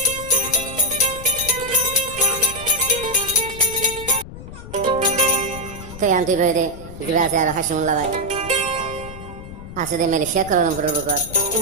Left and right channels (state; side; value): noise; left; rumble, 13 dB below the sound